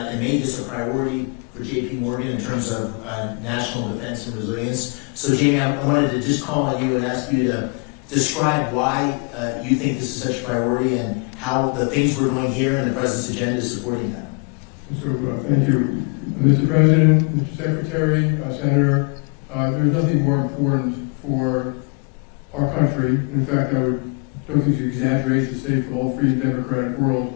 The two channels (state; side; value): quieter; right; 35.3 dB